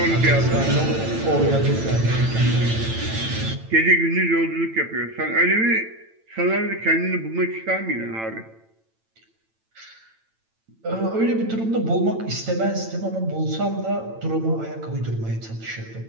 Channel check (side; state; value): left; late; 8.9 ms